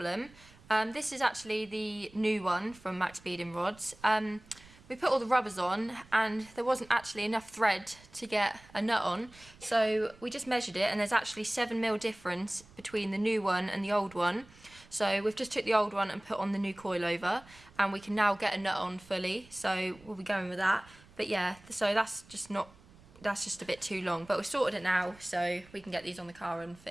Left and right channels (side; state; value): right; noise; rumble, 24 dB below the sound